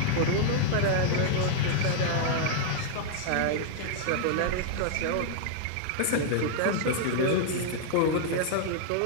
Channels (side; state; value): both; different; correlation -0.01